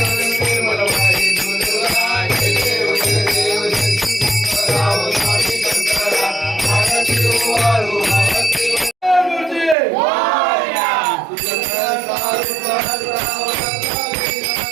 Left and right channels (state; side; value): drops out; left; at 9.8 s